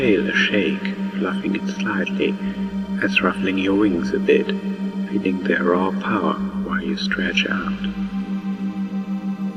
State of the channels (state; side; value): identical; both; correlation 1.00